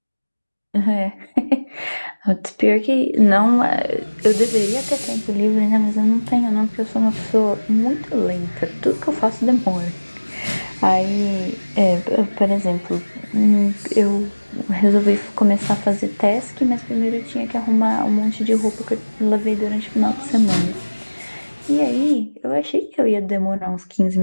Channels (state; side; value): inverted; both; correlation -1.00